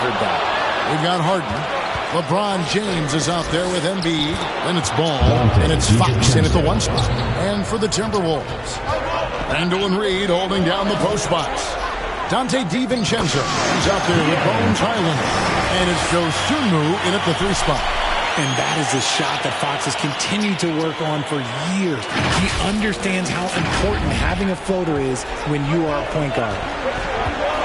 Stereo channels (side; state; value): both; identical; correlation 1.00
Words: that. We've got Harden. LeBron James is out there with Embiid. Then it's Ball. And it's Fox in at the 1 spot. And for the Timberwolves, Randall and Reed holding down the post spots. Dante DiVincenzo is out there with Bones Highland. And it's Joe Sumu in at the 3 spot. And that is a shot that Fox has continued to work on for years. He understands how important having a floater is when you are a point guard.